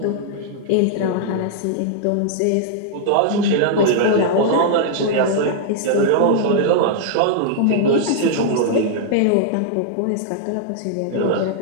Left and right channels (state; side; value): different; both; correlation -0.01